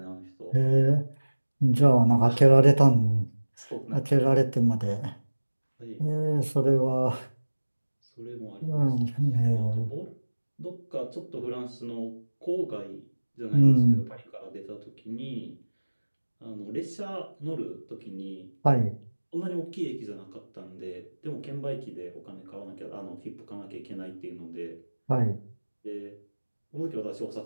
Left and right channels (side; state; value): both; inverted; correlation -1.00